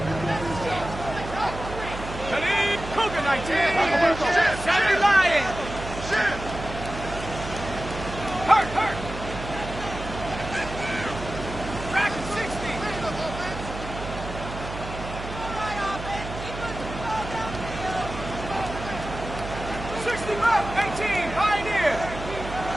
Cougar 19. Sammy Lion. Hurt. Rack 60.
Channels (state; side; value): noise; right; hum, 9 dB below the sound